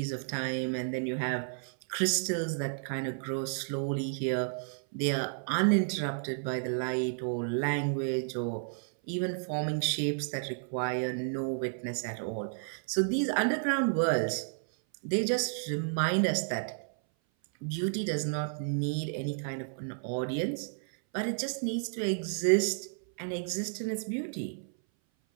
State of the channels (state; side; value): silent; left; 57 dB below the other